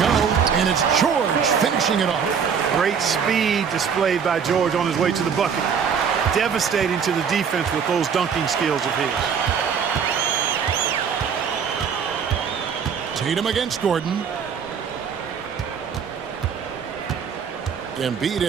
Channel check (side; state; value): left; quieter; 6.9 dB